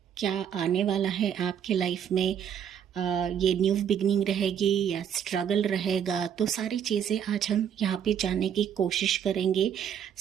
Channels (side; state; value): left; quieter; 8.7 dB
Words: क्या आने वाला है आपके लाइफ में, ये न्यू बिगनिंग रहेगी या स्ट्रगल रहेगा, तो सारी चीज़ें आज हम यहाँ पे जानने की कोशिश करेंगे।